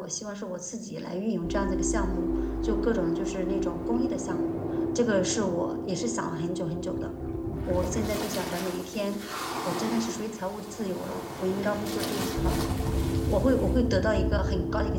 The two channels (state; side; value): identical; both; correlation 1.00